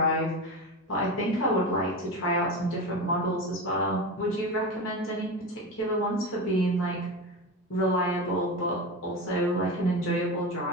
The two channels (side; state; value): both; normal; correlation 0.23